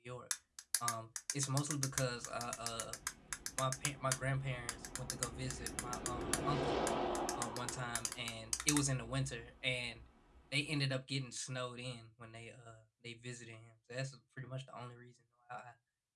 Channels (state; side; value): identical; both; correlation 1.00